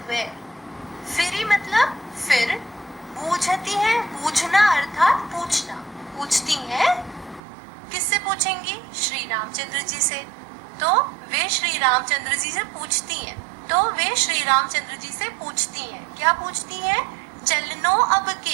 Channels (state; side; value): drops out; left; at 7.4 s